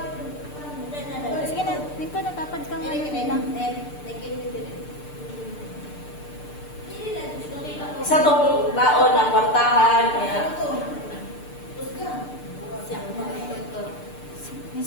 Sige na. Dito natapad kang lang. Isa tong taon na kwartahan, kaya,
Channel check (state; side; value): late; right; 6.7 ms